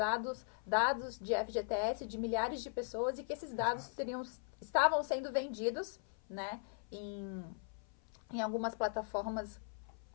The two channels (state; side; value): silent; right; 52 dB below the other